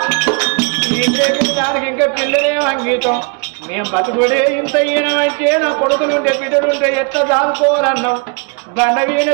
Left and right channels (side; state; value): left; quieter; 34.4 dB